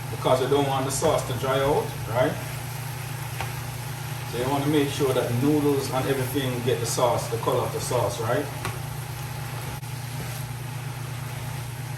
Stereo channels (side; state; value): both; identical; correlation 1.00